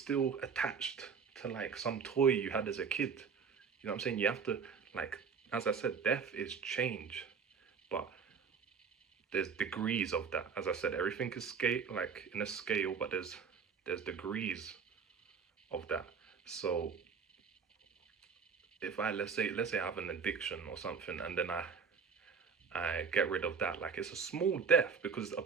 attached to like some toy you had as a kid. You know what I'm saying? You have to, like, as I said, death is change, but there's degrees of that. As I said, everything is scale, like in a scale, but there's degrees of that. So if let's say I have an addiction or something, and then I get rid of that, like, it's a small death, because a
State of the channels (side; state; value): left; quieter; 6.0 dB